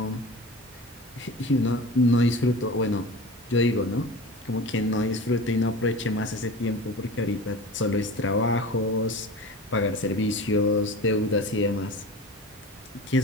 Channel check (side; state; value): both; normal; correlation 0.34